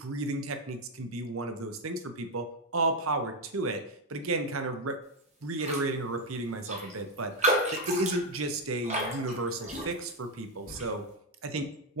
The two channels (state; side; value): normal; both; correlation 0.05